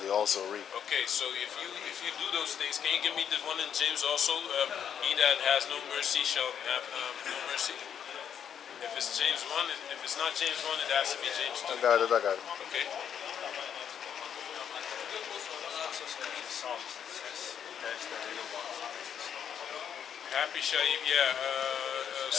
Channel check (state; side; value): quieter; right; 8.5 dB